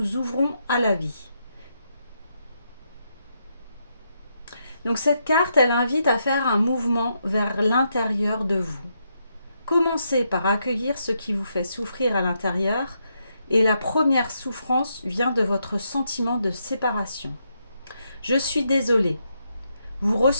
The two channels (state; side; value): inverted; both; correlation -0.80